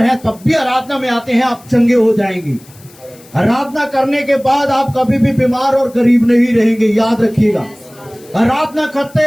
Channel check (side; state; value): left; noise; hiss, 25 dB below the sound